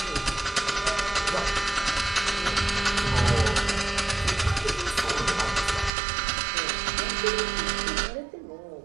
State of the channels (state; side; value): drops out; left; at 5.9 s